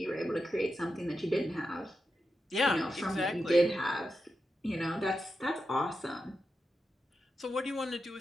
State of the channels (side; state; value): both; normal; correlation 0.88